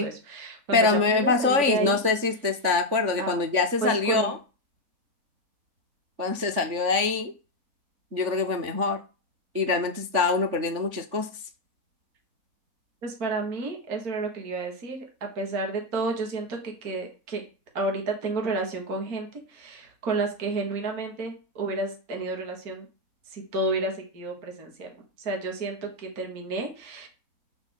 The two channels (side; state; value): left; late; 3.5 ms